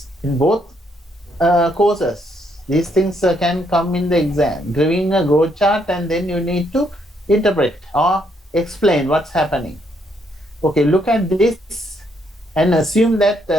in both courses. These things can come in the exam, giving a growth chart, and then you need to interpret or explain what's happening. Okay, look at this and assume that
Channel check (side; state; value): both; normal; correlation 0.73